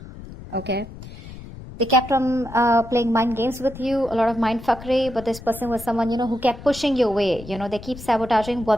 Okay, they kept on playing mind games with you, a lot of mind fuckery, but this person was someone, who kept pushing you away. They keep sabotaging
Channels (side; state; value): left; noise; rumble, 14 dB below the sound